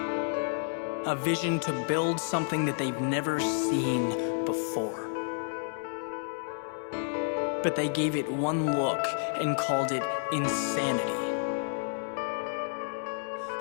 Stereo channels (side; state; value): right; silent; 58 dB below the other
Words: vision to build something that they've never seen before. But they gave it one look and called it insanity.